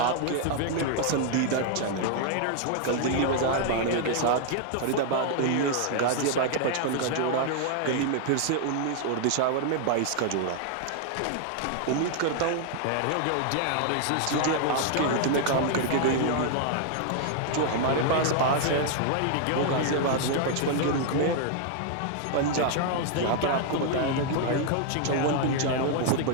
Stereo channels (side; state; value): both; different; correlation 0.00